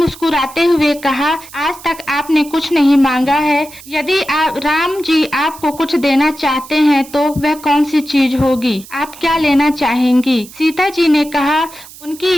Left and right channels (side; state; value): right; noise; hiss, 19 dB below the sound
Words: हुए कहा, आज तक आपने कुछ नहीं मांगा है। यदि राम जी आपको कुछ देना चाहते हैं तो वह कौन सी चीज होगी? आप क्या लेना चाहेंगी? सीता जी ने कहा उनकी